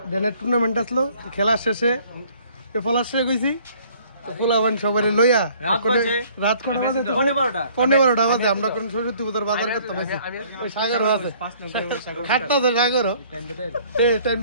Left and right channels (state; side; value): inverted; both; correlation -0.57